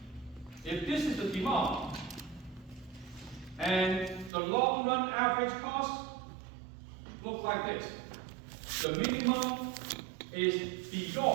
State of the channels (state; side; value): drops out; left; at 4.3 s